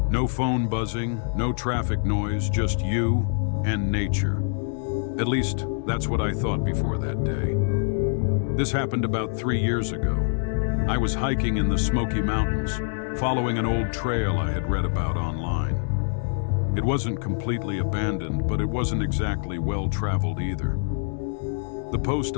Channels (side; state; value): right; silent; digital silence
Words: No phone buzzing, no traffic noise, just you and nature. At least, that's what I thought before that day. This happened about 3 years ago. I was hiking in the Smoky Mountains, following an old trail I had read about online. It wasn't completely abandoned, but it wasn't exactly well-traveled either. The post